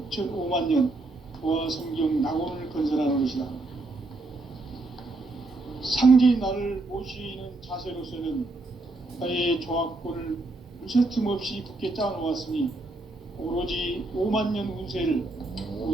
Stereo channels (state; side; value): quieter; left; 3.0 dB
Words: 조화 성경 낙원을 건설하는 것이다. 상제인 나를 모시는 자세로서는 나의 조화권을 무쇠 틈 없이 굳게 짜놓았으니 오로지 5만년 운세를